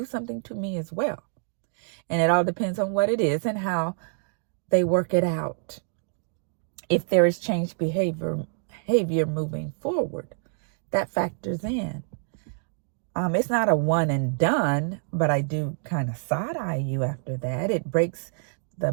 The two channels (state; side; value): silent; left; digital silence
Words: something to me as well. And it all depends on what it is and how they work it out. If there is changed behavior moving forward, that factors in. It's not a one and done, but I do kind of side eye you after that. It breaks the